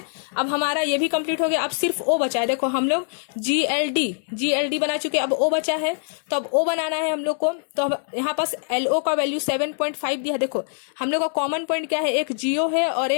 अब हमारा ये भी कंप्लीट हो गया। अब सिर्फ O बचा है। देखो हम लोग GLD बना चुके, अब O बचा है। तो अब O बनाना है हम लोग को। तो यहाँ पास LO का वैल्यू 7.5 दिया। देखो हम लोग का कॉमन पॉइंट क्या है? एक GO है और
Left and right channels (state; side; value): silent; right; digital silence